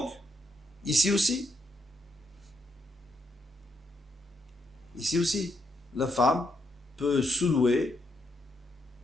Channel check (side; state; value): both; normal; correlation 0.78